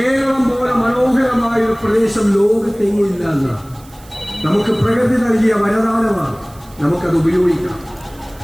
പോലെ മനോഹരമായ ഒരു പ്രദേശം ലോകത്തെങ്ങില്ല എന്നാണ്. നമുക്ക് പ്രകൃതി നൽകിയ വരദാനമാണ്, നമുക്കത് ഉപയോഗിക്കാം.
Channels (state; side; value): noise; right; hiss, 25 dB below the sound